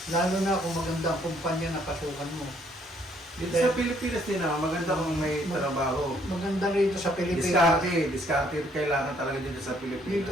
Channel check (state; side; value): normal; both; correlation 0.66